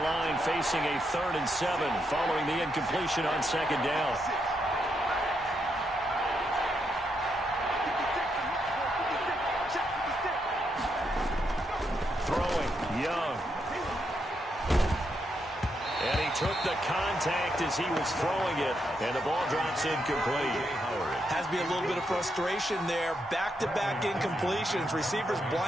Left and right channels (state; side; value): normal; both; correlation 0.80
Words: line facing a 3rd and 7 following the incompletion on 2nd down. Took the contact as he was throwing it, and the ball drops incomplete. Has to be a little bit of frustration there. Back-to-back incompletions. Receivers